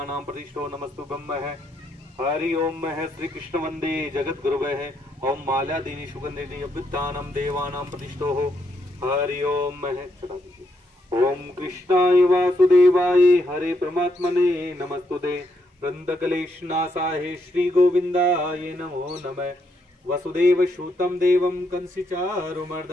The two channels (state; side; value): normal; both; correlation 0.77